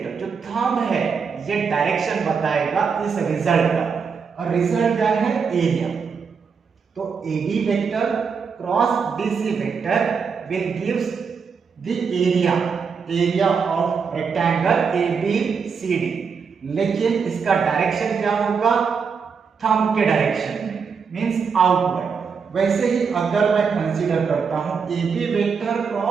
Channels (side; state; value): left; quieter; 5.9 dB